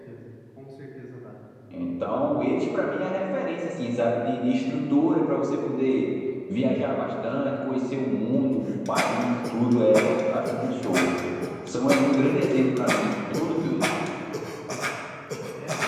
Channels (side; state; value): both; identical; correlation 1.00